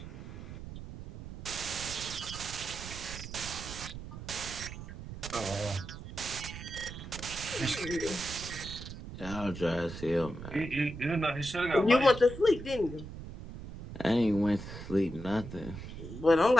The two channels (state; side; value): noise; right; rumble, 11 dB below the sound